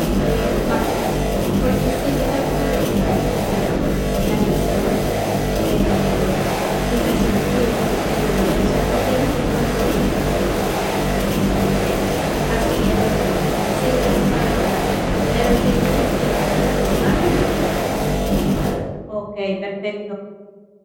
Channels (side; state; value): both; identical; correlation 1.00